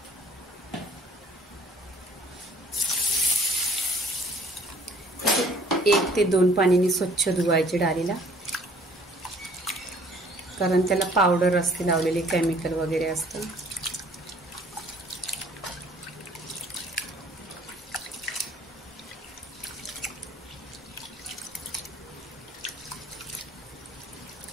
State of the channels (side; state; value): both; normal; correlation 0.56